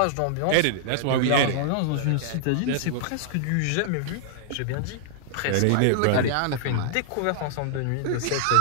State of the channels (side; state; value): both; different; correlation -0.01